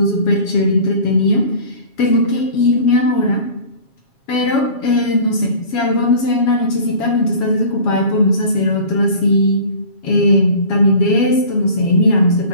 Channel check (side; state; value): right; late; 7.3 ms